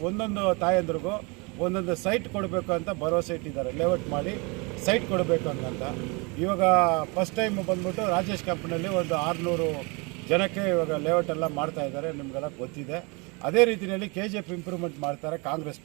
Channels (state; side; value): quieter; left; 29.5 dB